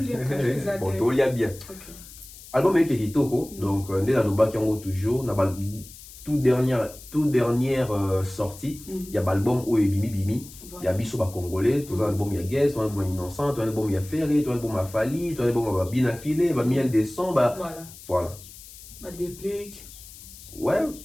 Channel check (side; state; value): left; noise; hiss, 18 dB below the sound